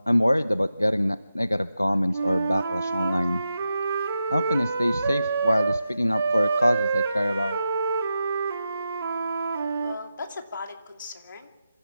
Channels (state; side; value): inverted; both; correlation -0.89